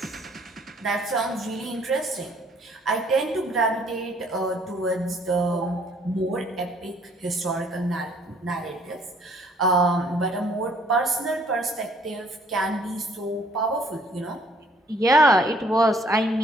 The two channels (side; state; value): both; normal; correlation 0.61